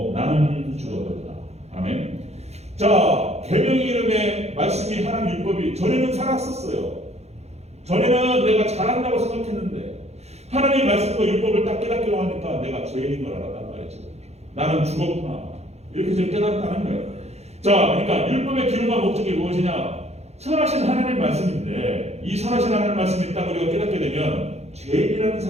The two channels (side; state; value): left; late; 0.31 ms